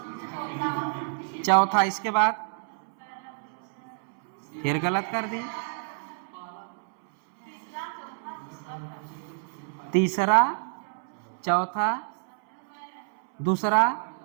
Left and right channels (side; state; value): left; silent; 59 dB below the other